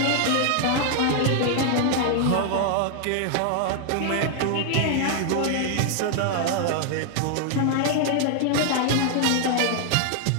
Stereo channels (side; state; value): both; different; correlation 0.00